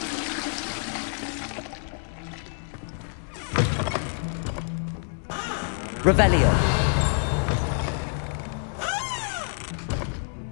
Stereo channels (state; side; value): silent; right; 56 dB below the other